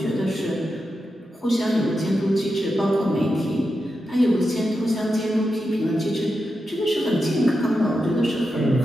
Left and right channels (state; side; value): normal; both; correlation 0.88